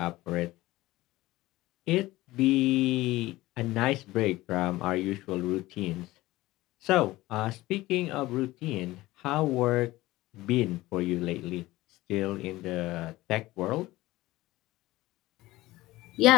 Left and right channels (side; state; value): right; quieter; 18.2 dB